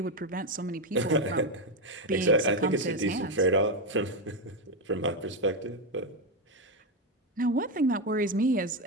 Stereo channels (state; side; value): normal; both; correlation 0.08